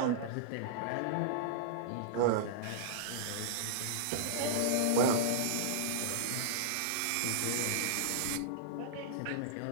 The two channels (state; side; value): different; both; correlation -0.02